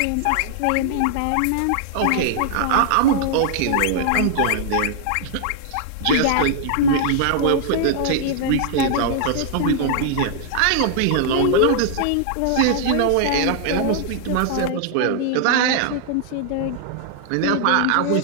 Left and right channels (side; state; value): both; different; correlation -0.01